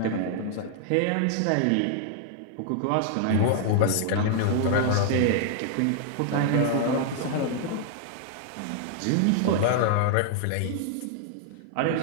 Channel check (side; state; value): both; different; correlation 0.00